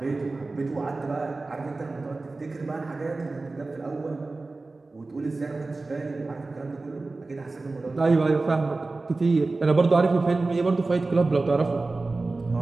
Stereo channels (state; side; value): quieter; left; 3.4 dB